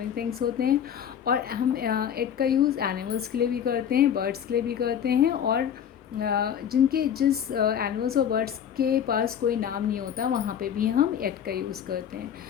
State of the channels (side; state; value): right; quieter; 8.9 dB